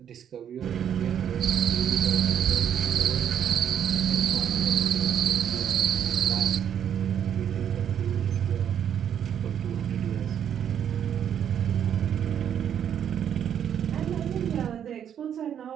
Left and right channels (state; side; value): quieter; left; 9.1 dB